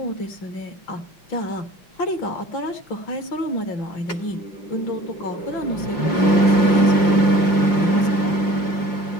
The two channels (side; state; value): right; late; 5.7 ms